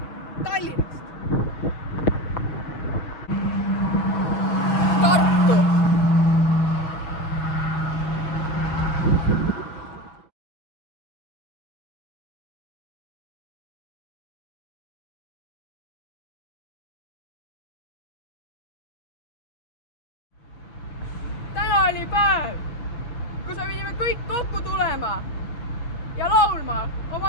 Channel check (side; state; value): right; late; 6.4 ms